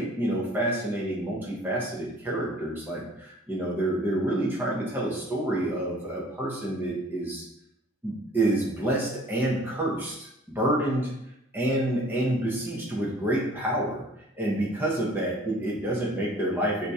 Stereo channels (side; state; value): both; normal; correlation 0.52